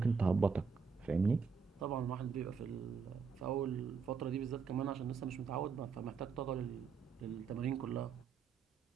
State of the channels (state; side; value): quieter; left; 5.7 dB